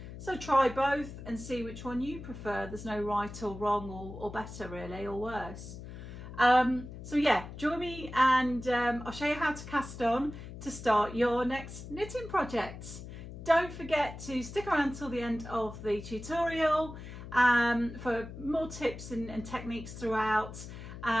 So try both and see which one you prefer. There's no right or wrong or better really, or worse. So yeah, join me and I'll show you how to cast on to start your next knitting projects. Don't forget to stick around till the end of the tutorial for more tips and techniques throughout,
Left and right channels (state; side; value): noise; left; hum, 12 dB below the sound